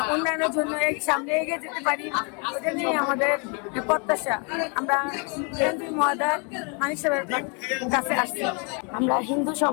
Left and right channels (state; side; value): quieter; right; 35.3 dB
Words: উন্নয়নের জন্য সামনে এগিয়ে যেতে পারি, ওটা নিয়ে আমাদের প্রত্যাশা। আমরা এমপি মহোদয় মানিক সাহেবের কাছে আসছি। আমরা হিন্দু